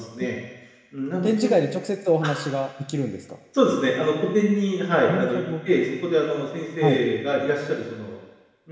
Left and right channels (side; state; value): both; identical; correlation 1.00